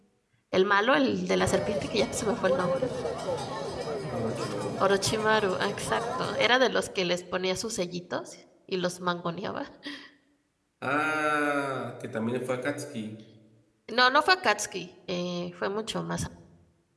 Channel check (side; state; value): both; identical; correlation 1.00